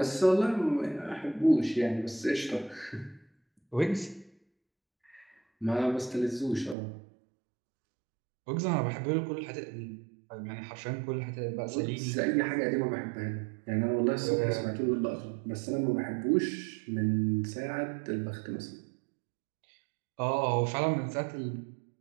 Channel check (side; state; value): left; drops out; at 6.8 s